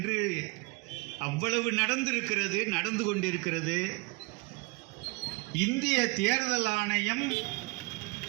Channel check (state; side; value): quieter; left; 26.9 dB